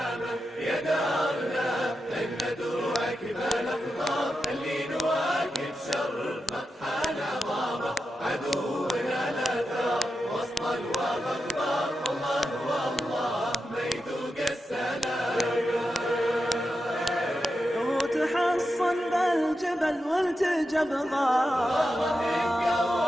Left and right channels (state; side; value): normal; both; correlation 0.89